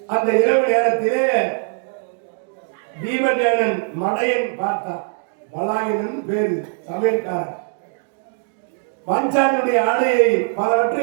அந்த இரவு நேரத்திலே பீமசேனன் மடையன் பார்த்தான். பலாயனன் பேரு, சமையல்காரன். பாஞ்சாலியுடைய ஆடையை பலவற்றை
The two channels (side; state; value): left; silent; digital silence